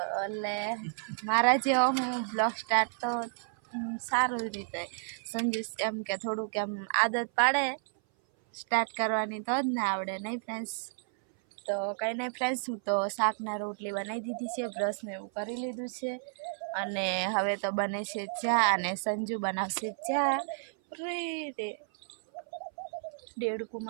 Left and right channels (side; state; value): left; silent; 57 dB below the other